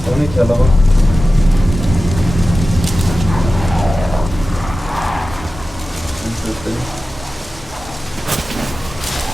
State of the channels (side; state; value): both; normal; correlation 0.95